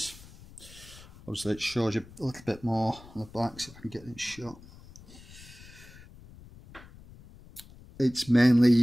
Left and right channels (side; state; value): left; noise; rumble, 20 dB below the sound